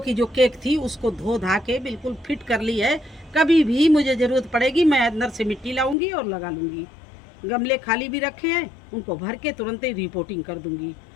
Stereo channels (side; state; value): right; drops out; at 6.0 s